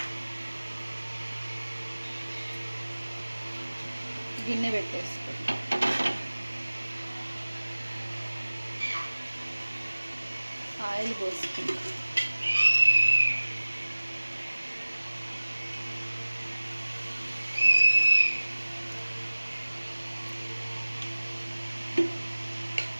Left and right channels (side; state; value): both; inverted; correlation -1.00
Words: గిన్నె పెట్టేసుకుంటాం. ఆయిల్ పోసుకుంటాం.